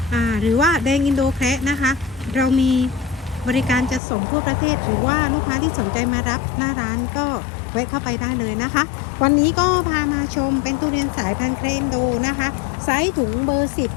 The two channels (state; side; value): drops out; right; at 4.0 s